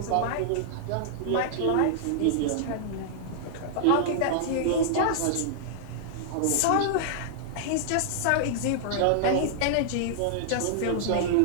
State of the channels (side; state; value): both; different; correlation -0.01